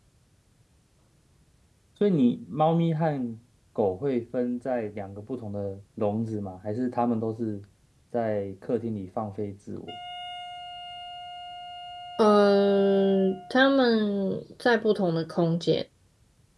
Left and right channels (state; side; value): identical; both; correlation 1.00